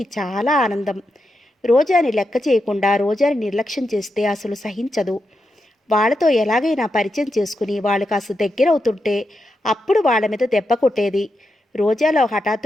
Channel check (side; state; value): both; normal; correlation 0.86